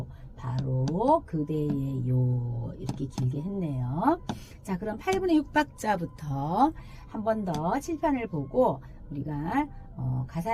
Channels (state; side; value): identical; both; correlation 1.00